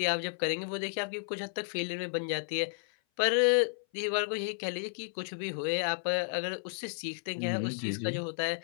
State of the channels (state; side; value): silent; right; 56 dB below the other